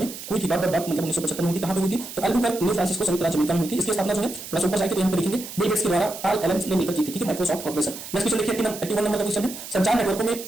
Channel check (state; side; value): noise; right; hiss, 11 dB below the sound